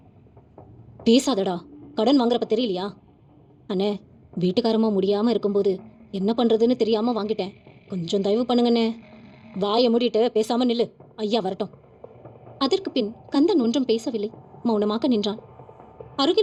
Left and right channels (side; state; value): both; identical; correlation 1.00